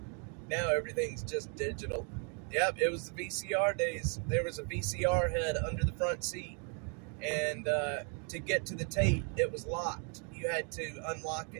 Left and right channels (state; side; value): quieter; left; 38.2 dB